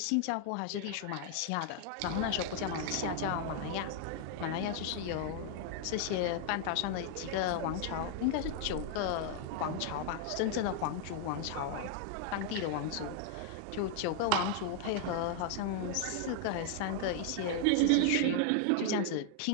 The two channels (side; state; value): both; different; correlation 0.00